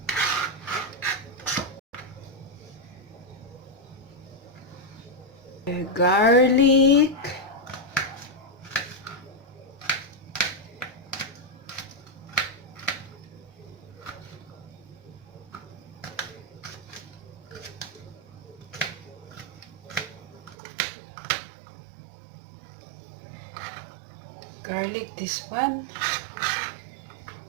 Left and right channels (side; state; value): left; drops out; at 20.6 s